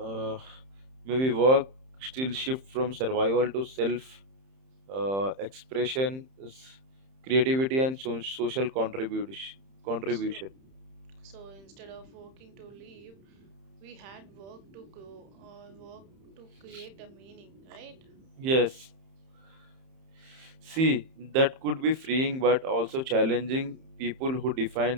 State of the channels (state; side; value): late; left; 31 ms